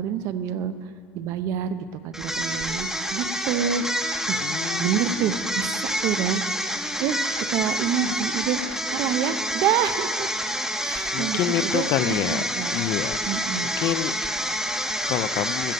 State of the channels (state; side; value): normal; both; correlation 0.43